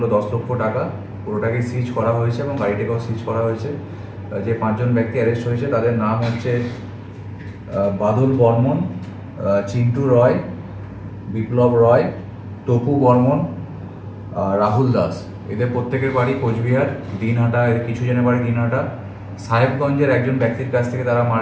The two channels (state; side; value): identical; both; correlation 1.00